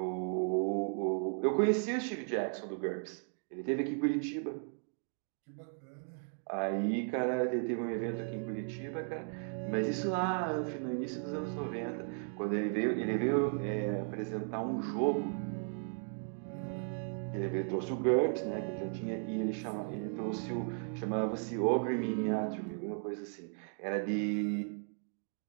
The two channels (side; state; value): left; silent; 54 dB below the other